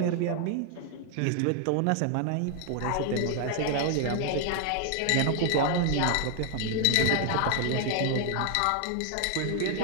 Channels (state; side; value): different; both; correlation 0.00